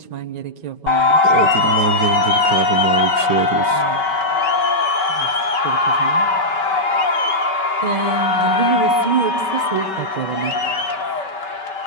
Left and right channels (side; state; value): right; late; 5.3 ms